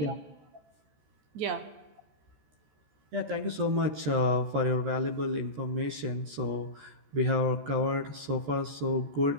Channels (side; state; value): left; late; 14 ms